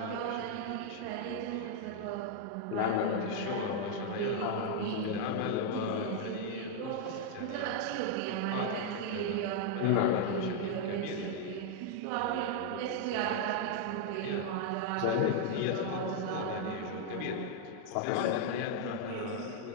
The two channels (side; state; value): both; different; correlation 0.00